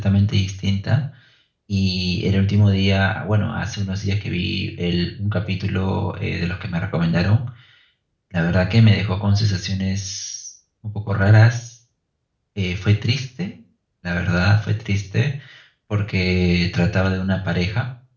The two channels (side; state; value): both; identical; correlation 1.00